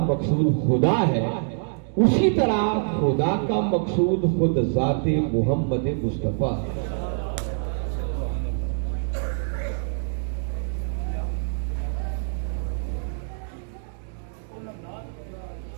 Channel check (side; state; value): left; silent; digital silence